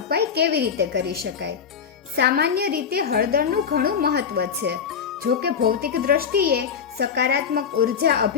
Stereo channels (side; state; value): right; quieter; 6.9 dB